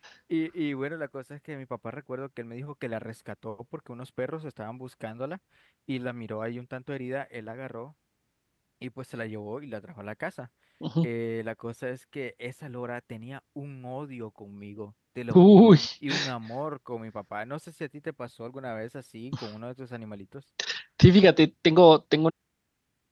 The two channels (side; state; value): both; identical; correlation 1.00